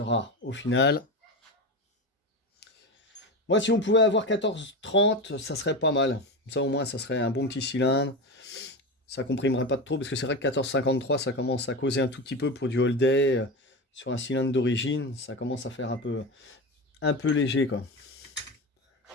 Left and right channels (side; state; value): both; normal; correlation 0.22